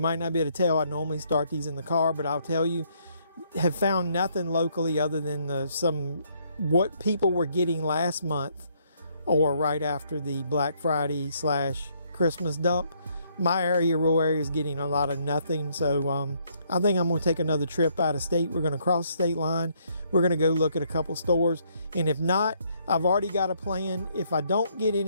not be able to tell, I normally start these in the car, but I'll tell you, have found nothing locally other than what people were getting last month or right after the Black Friday / Christmas dump. My area, rural area, is getting a lot of nothing. So I think I'm going to take another trip out of state. We're going to cross the state line. We're going to go look at a couple stores. And if not, I've already got a plan. If I don't get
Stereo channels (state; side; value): inverted; both; correlation -0.69